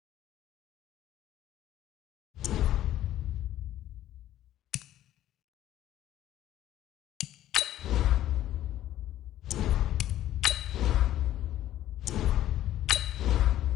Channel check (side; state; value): right; quieter; 12.9 dB